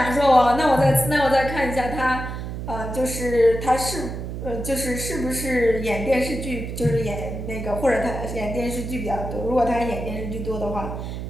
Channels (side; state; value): right; noise; hum, 6 dB below the sound